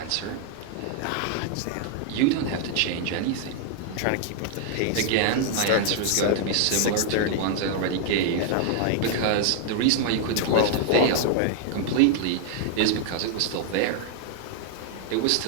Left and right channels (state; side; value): different; both; correlation -0.01